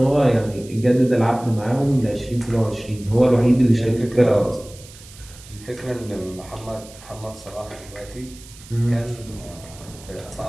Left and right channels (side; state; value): right; noise; hiss, 20 dB below the sound